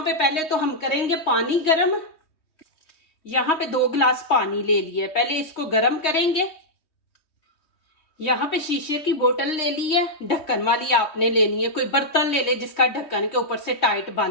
पे पहले तो हम करेंगे पानी गरम। यहाँ पे 2 गिलास पानी ले लिए, पहले इसको गरम करेंगे। यहाँ पे शीशे की बोतल ले ली है, ढक्कन वाली आपने लेनी है, कोई बर्तन ले ले जिसका ढक्कन के ऊपर से टाइट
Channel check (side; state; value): right; late; 3.2 ms